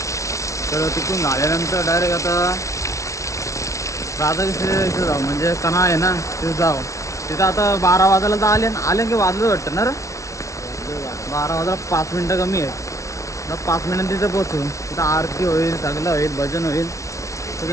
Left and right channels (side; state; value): right; late; 0.15 ms